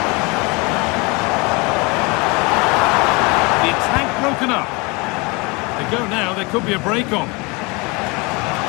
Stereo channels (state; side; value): quieter; right; 27.5 dB